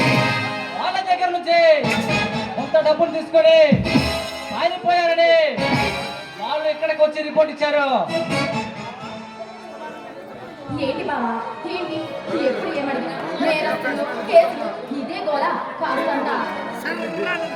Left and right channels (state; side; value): identical; both; correlation 1.00